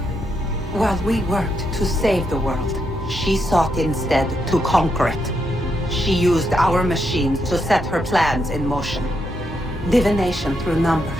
While we worked to save the world, she sought instead to conquer it. She used our machines to set her plans in motion. Divination through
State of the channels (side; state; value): both; normal; correlation 0.80